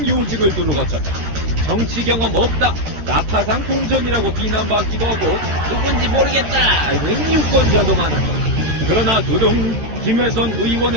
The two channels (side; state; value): left; late; 13 ms